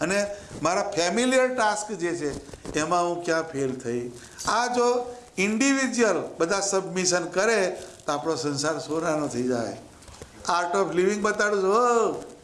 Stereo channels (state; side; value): identical; both; correlation 1.00